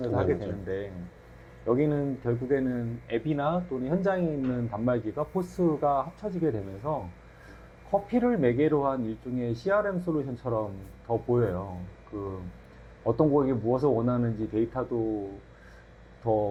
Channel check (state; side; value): identical; both; correlation 1.00